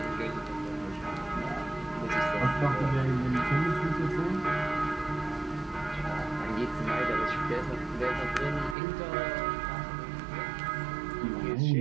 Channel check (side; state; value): left; drops out; at 8.8 s